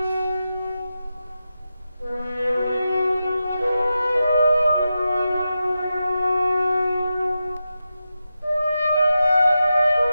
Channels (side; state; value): both; inverted; correlation -0.90